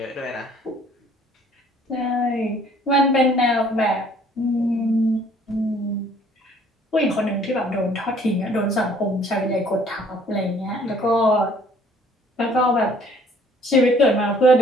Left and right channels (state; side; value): normal; both; correlation 0.58